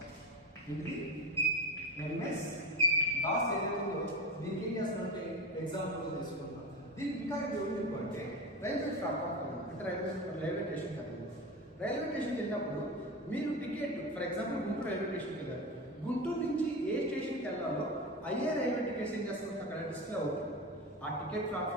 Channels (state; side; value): normal; both; correlation 0.24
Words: ఇది MS DOS ఏదైతే ఉందో దీనికి ఏం చేస్తామంటే ఎగ్జాంపుల్ తీసుకుంటాం. దీనికి ఇంకా ఏమిటి అంటే రైల్వే ప్లాట్ఫామ్ అంటే రైల్వే స్టేషన్ కదా. రైల్వే స్టేషన్కి వెళ్ళినప్పుడు మీరు ticket, for example Guntur railway స్టేషన్కి వెళ్ళారు. గుంటూరు నుంచి ఏ స్టేషన్కి వెళ్ళాలో అయ్యే రైల్వే టికెట్స్ ఏం చేస్తాం అక్కడ డిస్ప్లే అవుతుంది. ఆ టికెట్